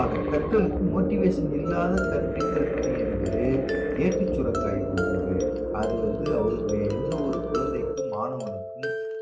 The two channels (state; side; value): identical; both; correlation 1.00